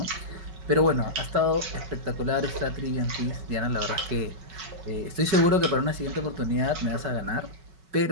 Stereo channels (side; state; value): left; late; 5.3 ms